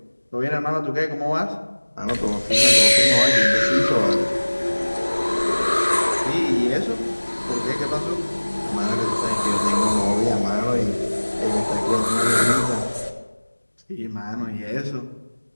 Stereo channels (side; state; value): both; inverted; correlation -1.00